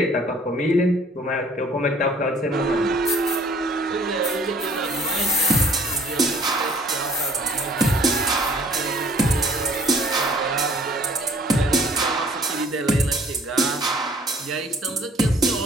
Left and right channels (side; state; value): both; normal; correlation 0.55